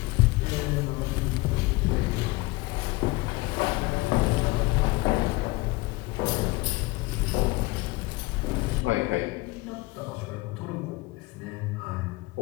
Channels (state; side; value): quieter; right; 22.4 dB